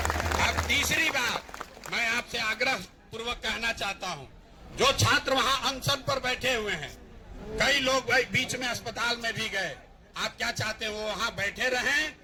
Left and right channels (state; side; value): identical; both; correlation 1.00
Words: अब तीसरी बात मैं आपसे आग्रह पूर्वक कहना चाहता हूं, जो छात्र वहां अनशन पर बैठे हुए हैं, कई लोग भाई बीच में अस्पताल में भी गए, आप क्या चाहते हैं वो वहां बैठे रहें